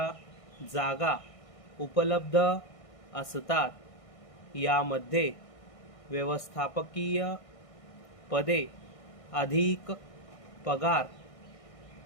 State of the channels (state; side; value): late; right; 1.6 ms